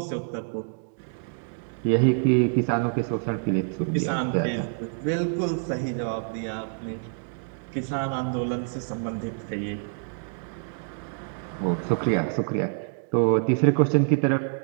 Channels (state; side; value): silent; left; digital silence